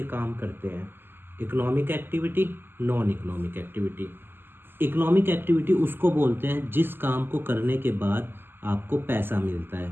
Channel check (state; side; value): late; left; 0.10 ms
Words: काम करते हैं, economic activity, non economic activity. Economic activity उसको बोलते हैं जिस काम को करने के बाद आपको पैसा मिलता है,